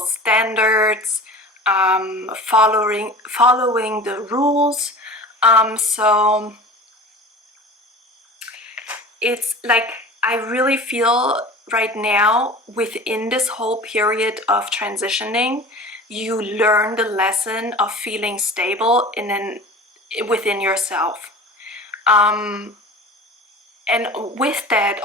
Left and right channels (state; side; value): normal; both; correlation 0.38